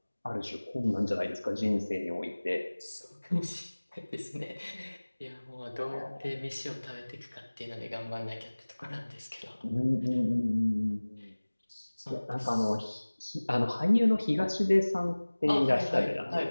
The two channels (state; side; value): inverted; both; correlation -1.00